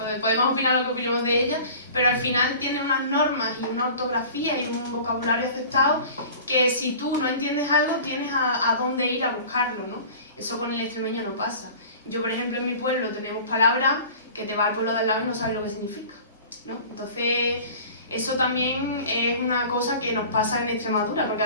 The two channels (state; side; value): inverted; both; correlation -0.42